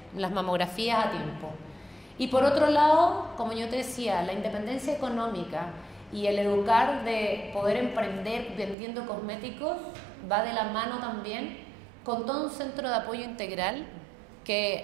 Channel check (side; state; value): left; drops out; at 8.8 s